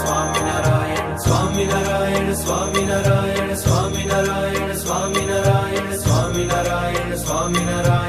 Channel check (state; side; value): identical; both; correlation 1.00